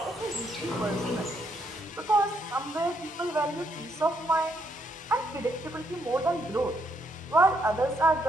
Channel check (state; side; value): normal; both; correlation 0.74